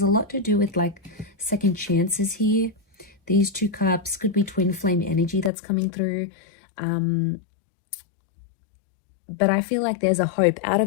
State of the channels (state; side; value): drops out; right; at 5.5 s